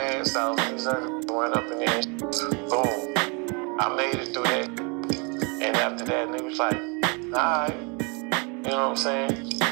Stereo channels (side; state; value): left; quieter; 32.1 dB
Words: off. These other went up in there and boom. I made it through that. And after that, nigga was like, alright. You know what I'm saying?